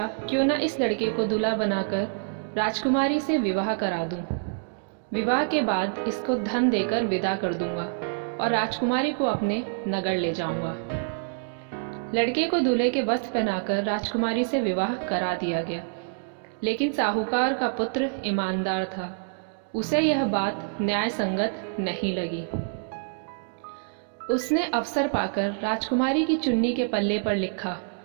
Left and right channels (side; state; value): left; silent; digital silence